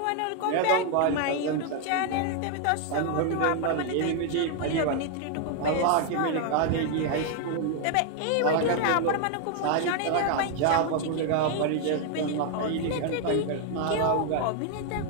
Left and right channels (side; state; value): both; different; correlation 0.00